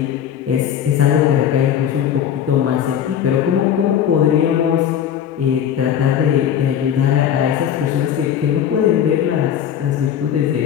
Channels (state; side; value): quieter; right; 9.4 dB